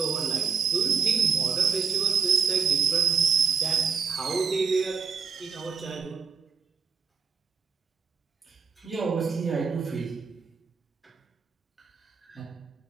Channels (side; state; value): left; quieter; 5.7 dB